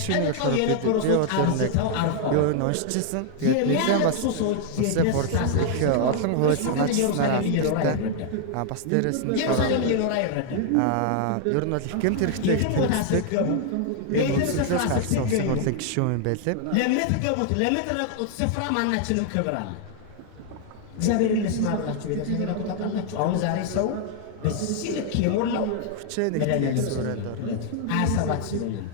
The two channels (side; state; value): both; different; correlation 0.00